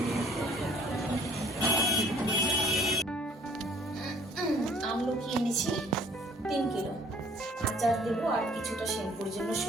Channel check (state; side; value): normal; both; correlation 0.57